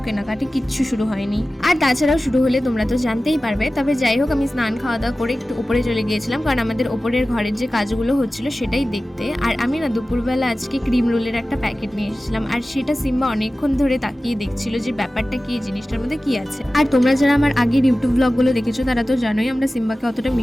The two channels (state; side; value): normal; both; correlation 0.96